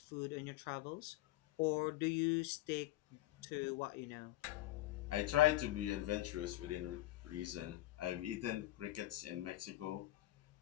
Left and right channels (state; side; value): quieter; right; 15.7 dB